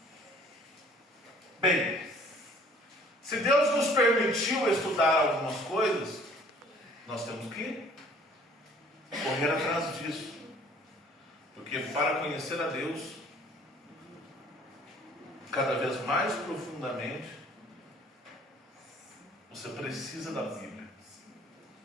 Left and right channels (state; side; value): normal; both; correlation 0.55